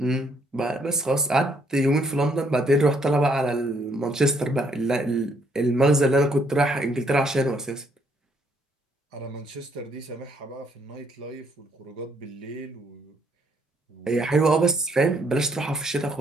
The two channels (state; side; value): normal; both; correlation 0.69